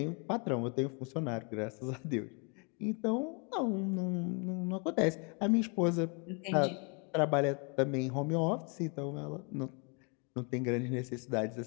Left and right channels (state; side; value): quieter; right; 35.3 dB